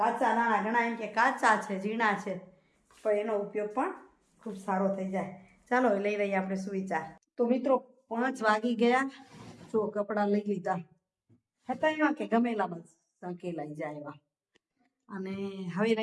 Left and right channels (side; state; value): both; identical; correlation 1.00